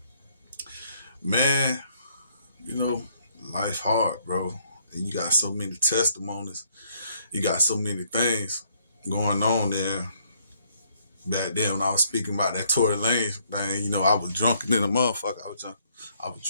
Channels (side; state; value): both; inverted; correlation -0.68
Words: man, you know, life hard, bro, and you got so many testimonies. You got so many things going on there. Back then, when I was speaking about that Tory Lanez, man, I was drunk than a motherfucker. I was drunk. I was